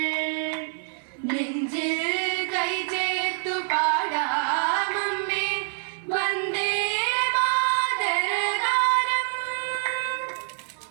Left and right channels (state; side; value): silent; left; 61 dB below the other